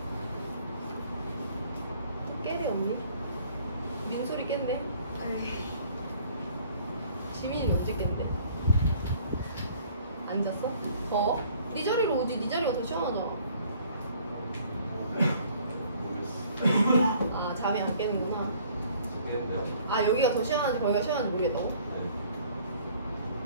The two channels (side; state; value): both; inverted; correlation -0.56